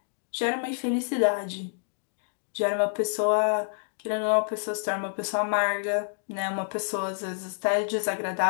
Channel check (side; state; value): right; silent; digital silence